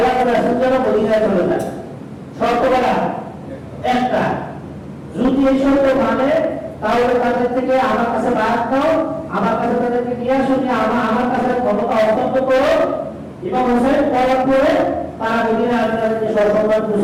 রাসূল যেন মদিনায় চলে যায়। শর্ত কয়টা? একটা। যদি এই শর্ত মানে তাহলে তাদের থেকে আমার কাছে বায়াত নাও, আমার কাছে তাদেরকে নিয়ে আসো, যে আমার কাছে ক্ষমতা হস্তান্তর করো, ইমাম হোসেন করার পরে তারা মদিনায় তাদেরকে সসম্মান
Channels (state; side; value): identical; both; correlation 1.00